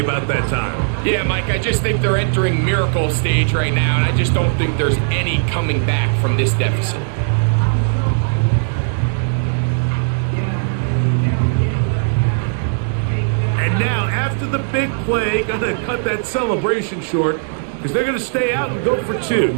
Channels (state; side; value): silent; left; digital silence